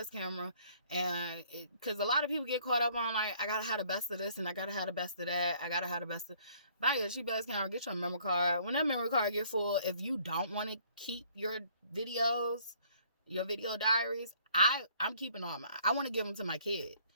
And because a lot of people get caught up on, like, I gotta have the best of this and I gotta have the best of that. Buy you a cheap ass camera, get your memory card. When that memory card get full, if you don't want to keep your videos, your video diaries, I'm keeping all mine. I want to give them to my kid.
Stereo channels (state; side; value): inverted; both; correlation -0.61